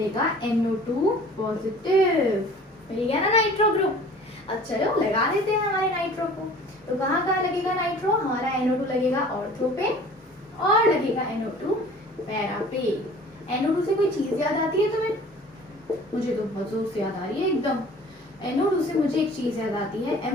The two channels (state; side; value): normal; both; correlation 0.47